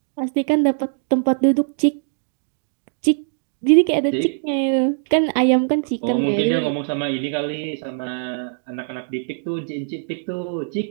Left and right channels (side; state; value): left; silent; digital silence